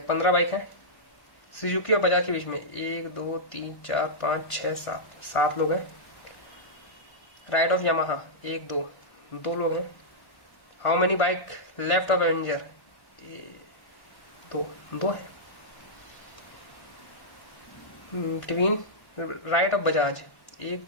15 बाइक है सुजुकी और बजाज के बीच में, 1 2 3 4 5 6 7 लोग हैं। राइट ऑफ यामाहा 1 2 लोग हैं। How many bike left of Avenger? 2 है। Between right of Bajaj 1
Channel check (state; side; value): late; right; 1.1 ms